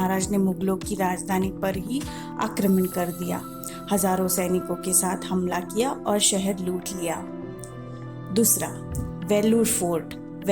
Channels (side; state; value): both; identical; correlation 1.00